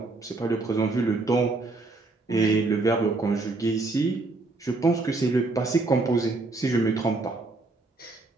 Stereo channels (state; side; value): quieter; left; 3.3 dB